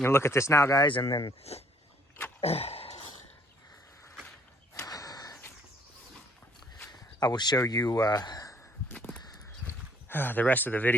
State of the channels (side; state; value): both; normal; correlation 0.63